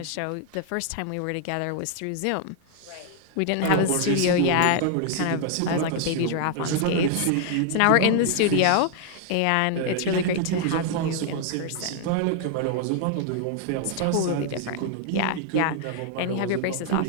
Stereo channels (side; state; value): both; different; correlation 0.00